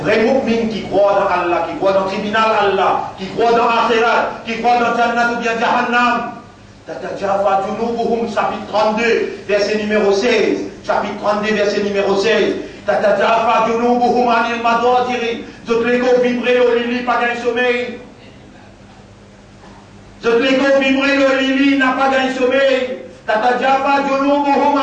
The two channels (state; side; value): identical; both; correlation 1.00